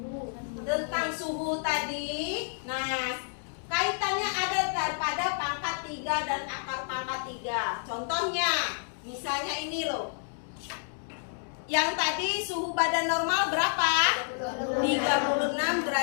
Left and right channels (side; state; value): right; silent; digital silence